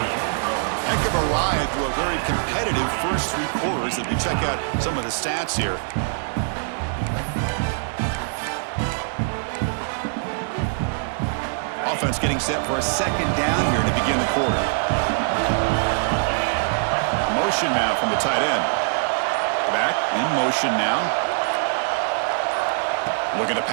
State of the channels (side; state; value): left; silent; digital silence